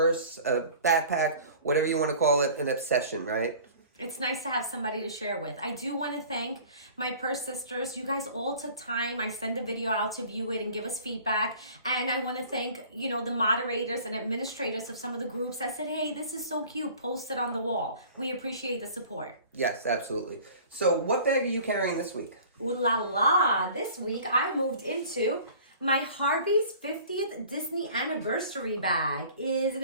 a backpack, whatever you want to call it, an obsession, right? It's nice to have somebody to share with. I do want to thank my Purse Sisters. You guys all took time. I send the video out to view it and give us feedback. And I want to thank, the moderators and administrators of some of the groups that said, hey, this is so cute, post it on the wall. We appreciate the support. Yes, absolutely. So what bag are you carrying this week? Ooh la la. This week I moved into my Harvey's 50th Disney anniversary bag.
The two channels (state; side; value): inverted; both; correlation -0.47